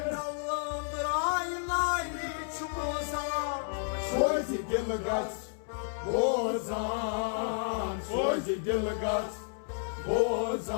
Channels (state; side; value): silent; right; 57 dB below the other